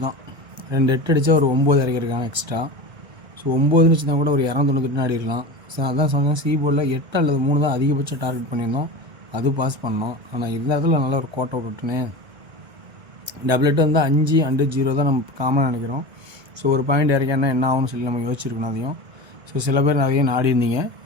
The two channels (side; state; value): left; late; 1.7 ms